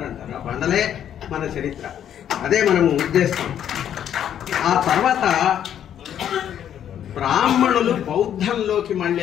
ఆ బండలే మన చరిత్ర, అదే మనము ఉద్దేశం. ఆ తర్వాత బ్రాహ్మణులు బౌద్ధంలోకి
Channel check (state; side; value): quieter; right; 9.9 dB